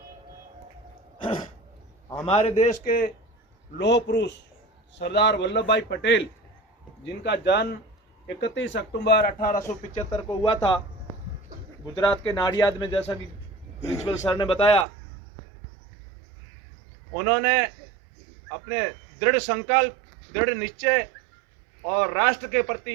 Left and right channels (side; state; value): left; drops out; at 14.9 s